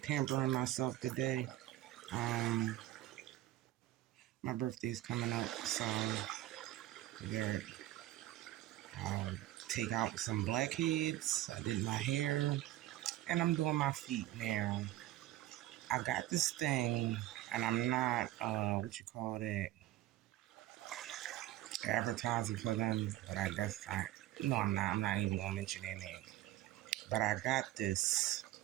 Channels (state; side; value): quieter; left; 14.8 dB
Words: pampering myself today. Um, my birthday's coming up, so we're I'll take out some blackheads. I did my hair, and I'm doing my feet now. I got this thing, and I'm not what you call it, advertising for them, but I guess I no, I'm not. I'm not even gonna mention their name. But I got this,